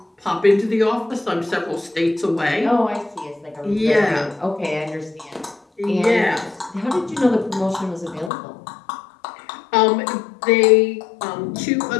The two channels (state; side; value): drops out; right; at 8.3 s